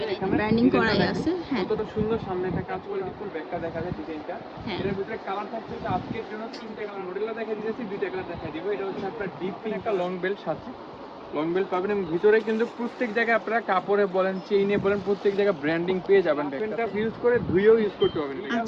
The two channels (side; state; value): both; identical; correlation 1.00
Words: ব্র্যান্ডিং করাই আছে। হ্যাঁ, কতটা সুন্দর সামনে একটা কাজ করে ফুল ব্যাকটা দেখা যায় ডিজাইনটা। এর ভিতরে কালার থাকছে যে আজকের জন্য তিনটা কালার মডেলটা দেখা দিয়েছি, দুইটা কালার দেখা দিব। এটা হচ্ছে আপনার ডিপ পিঙ্ক, একটা লং বেল্ট সাথে লং বেল্ট পাবেন, এবং ভিতরে কিন্তু প্রত্যেক জায়গায় আপনারা কাপড়ে বলেন চেইনে বলেন প্রত্যেক জায়গায় ব্র্যান্ডিং পেয়ে যাবেন। ব্যাগটা ইউজ করে ধুয়েও ইউজ করতে পারবেন। এটা